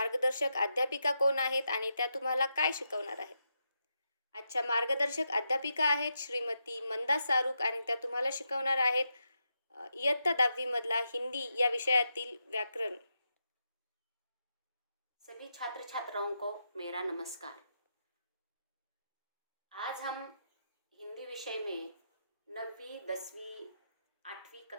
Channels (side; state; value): both; inverted; correlation -0.84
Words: अध्यापिका कोण आहेत आणि त्या तुम्हाला काय शिकवणार आहेत. आजच्या मार्गदर्शक अध्यापिका आहेत श्रीमती मंदा सारूक आणि त्या तुम्हाला शिकवणार आहेत इयत्ता 10वी मधला हिंदी या विषयातील व्याकरण. सभी छात्र छात्राओं को मेरा नमस्कार। आज हम हिंदी विषय में 9वीं 10वीं 8वीं